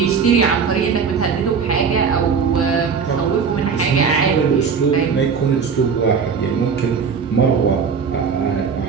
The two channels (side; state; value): left; quieter; 6.0 dB